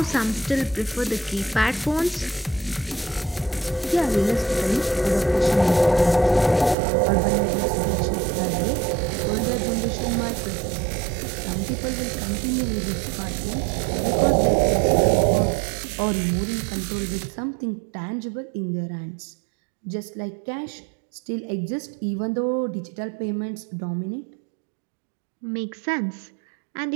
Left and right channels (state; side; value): drops out; left; at 6.8 s